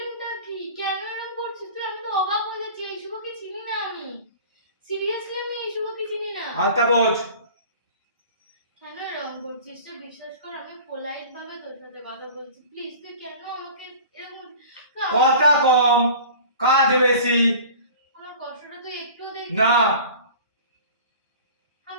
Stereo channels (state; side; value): inverted; both; correlation -0.41